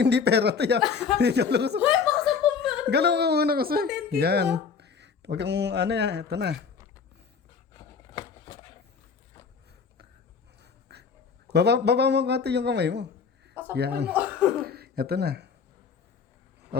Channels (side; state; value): right; quieter; 5.9 dB